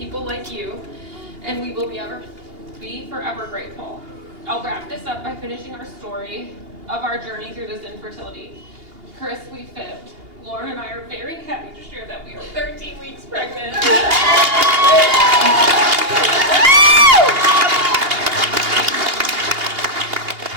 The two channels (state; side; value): late; left; 2.8 ms